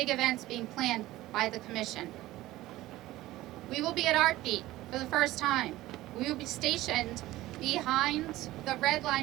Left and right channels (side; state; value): left; quieter; 16.7 dB